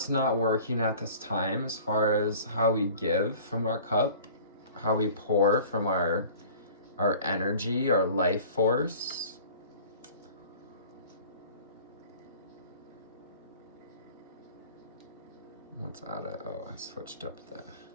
not working at this time as far as how we give from our cup, how we pour from our energy, our life force. What's out of, I switched up the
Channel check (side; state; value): both; inverted; correlation -0.45